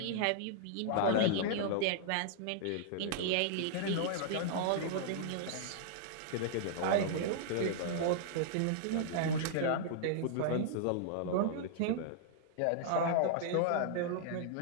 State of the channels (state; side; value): different; both; correlation -0.01